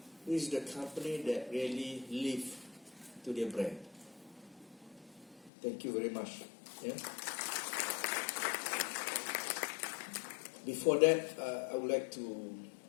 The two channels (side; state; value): right; drops out; at 5.5 s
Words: This is the company that really live to their brand. Thank you very much. Before that, I